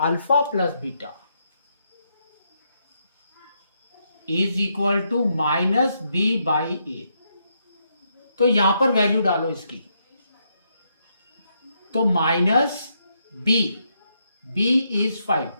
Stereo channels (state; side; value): inverted; both; correlation -0.79